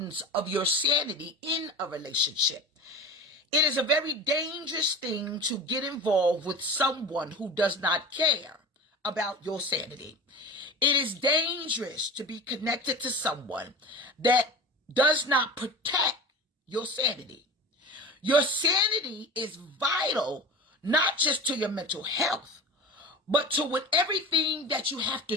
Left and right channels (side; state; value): both; normal; correlation 0.33